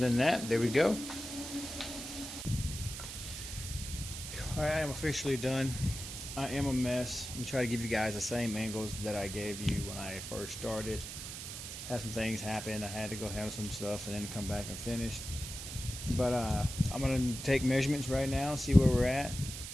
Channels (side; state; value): right; noise; hiss, 8 dB below the sound